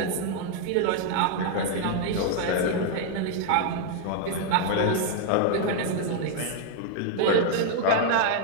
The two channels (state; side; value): different; both; correlation 0.00